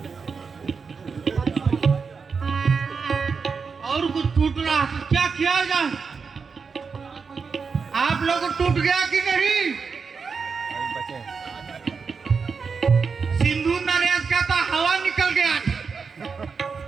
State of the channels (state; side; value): quieter; left; 5.3 dB